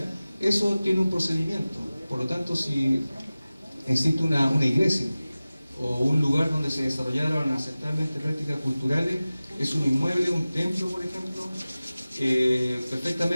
Eso tiene un procedimiento. Por lo tanto, si existe una iglesia o un lugar donde se desarrollaron ancestralmente prácticas culturales, es un inmueble, un templo, por ejemplo,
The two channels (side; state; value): both; inverted; correlation -0.97